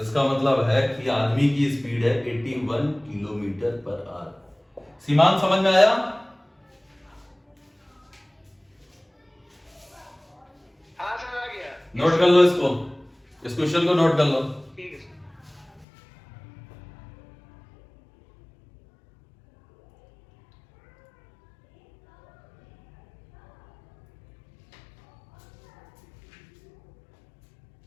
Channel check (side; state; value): right; drops out; at 15.9 s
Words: इसका मतलब है कि आदमी की स्पीड है 81 किलोमीटर पर आवर। सीमांत समझ में आया? हाँ सर, आ गया। नोट कर लो इसको, इस क्वेश्चन को नोट कर लो। ठीक है सर।